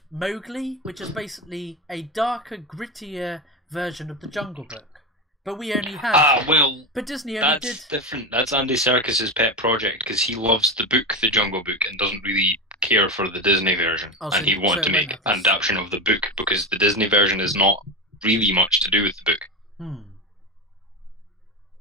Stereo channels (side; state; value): both; normal; correlation 0.18